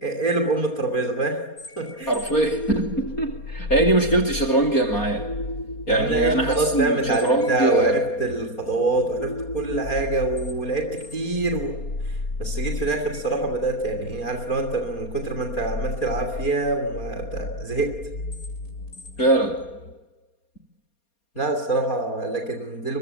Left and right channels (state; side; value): late; right; 4.3 ms